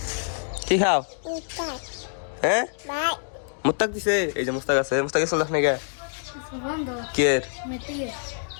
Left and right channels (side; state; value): right; silent; digital silence